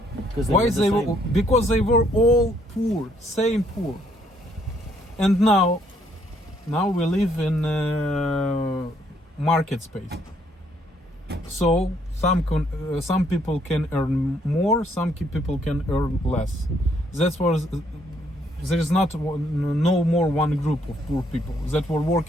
Because they were all poor, same poor. And now we live in market space. So some people can earn more, some people can earn less. That's what there is no more one group of poor people that were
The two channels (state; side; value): normal; both; correlation 0.69